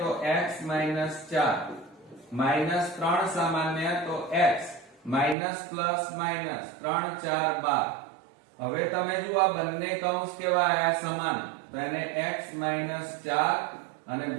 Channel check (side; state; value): left; drops out; at 5.4 s